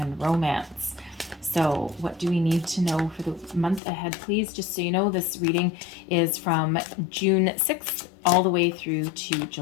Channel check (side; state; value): right; drops out; at 3.8 s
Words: romance. So what do we need to know for the month ahead, please? Just so you know, this reading is from June 6th all the way through to